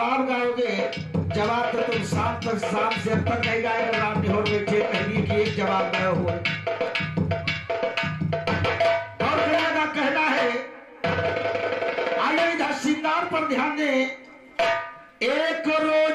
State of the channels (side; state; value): both; identical; correlation 1.00